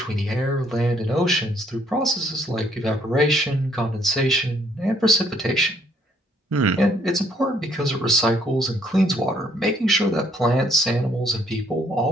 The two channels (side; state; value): both; normal; correlation 0.66